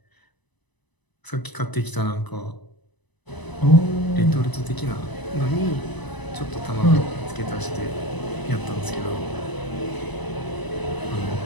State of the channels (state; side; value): late; right; 1.0 ms